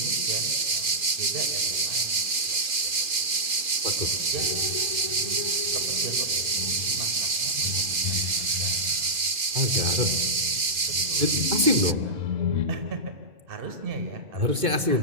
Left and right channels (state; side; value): late; left; 2.4 ms